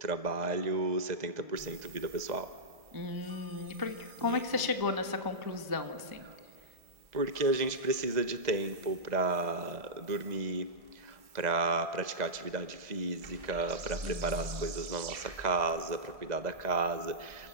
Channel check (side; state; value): left; late; 2.0 ms